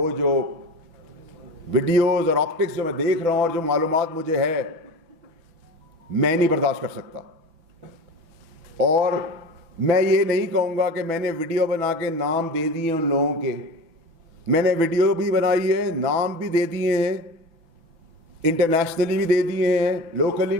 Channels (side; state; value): left; late; 6.1 ms